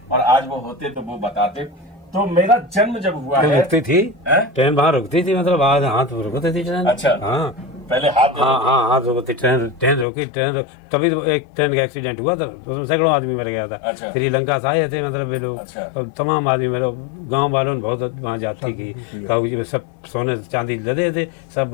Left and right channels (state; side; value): drops out; right; at 10.1 s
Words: और आज वो होते तो वो बताते। तो मेरा जन्म जब हुआ है, रुकती थी ट्रेन, वहाँ रुकती थी, मतलब आज हाथ रुकती थी ट्रेन। अच्छा हाँ, पहले हाथ हाँ हाँ हाथ रोकते, ट्रेन ट्रेन रोकी, तभी तो एक ट्रेन का एक्सीडेंट हुआ था, उसमें सैकड़ों आदमी मर गया था। अच्छा। श्रीलंका से आए थे मतलब ये लोग, अच्छा। तो तमाम आदमी मेरे गांव वालों ने बहुत वहाँ जाती की, तो सब सोने चांदी लदे थे, सब